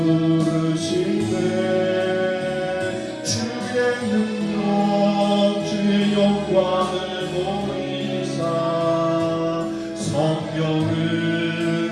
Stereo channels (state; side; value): identical; both; correlation 1.00